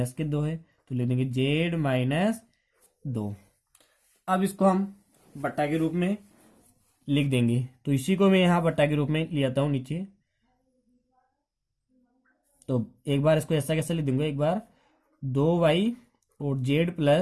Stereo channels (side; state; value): both; identical; correlation 1.00